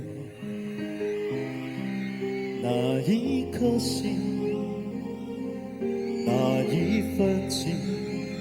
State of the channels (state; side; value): identical; both; correlation 1.00